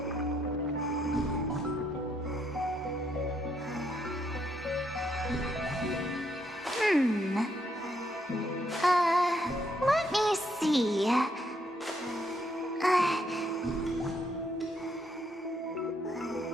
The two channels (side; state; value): both; normal; correlation 0.74